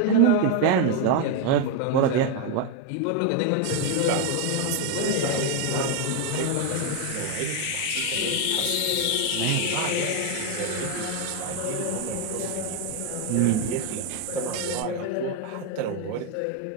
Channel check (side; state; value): both; different; correlation 0.01